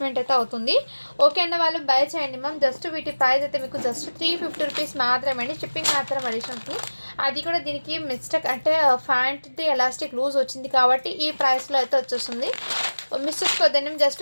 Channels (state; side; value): inverted; both; correlation -1.00